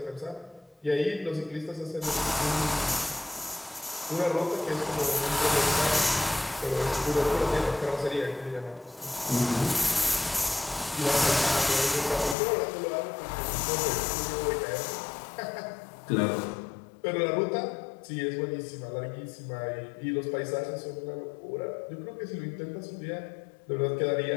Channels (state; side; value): drops out; right; at 12.4 s